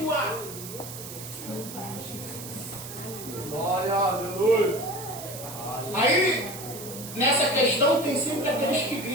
Glória, aleluia. Aí, nessa questão, tem sempre aqueles que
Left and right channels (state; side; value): noise; right; hiss, 11 dB below the sound